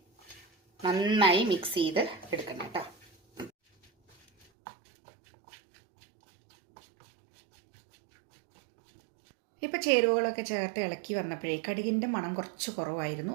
നന്നായി മിക്സ് ചെയ്ത് എടുക്കണം കേട്ടോ. ഇപ്പോൾ ചേരുവകളൊക്കെ ചേർത്ത് ഇളക്കി വന്നപ്പോഴേ കടുകിൻ്റെ മണം കുറച്ച് കുറവായിരുന്നു.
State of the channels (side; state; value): left; drops out; at 4.5 s